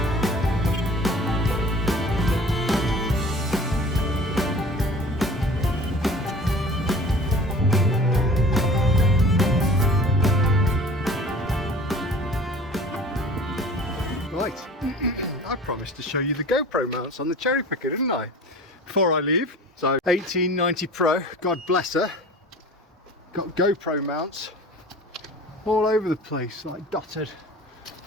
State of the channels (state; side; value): normal; both; correlation 0.43